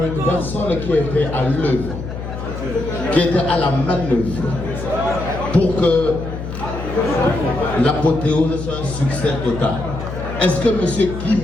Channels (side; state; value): left; noise; hum, 8 dB below the sound